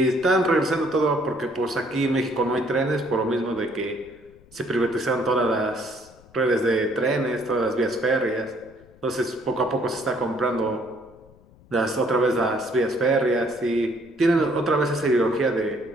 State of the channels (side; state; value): left; noise; rumble, 26 dB below the sound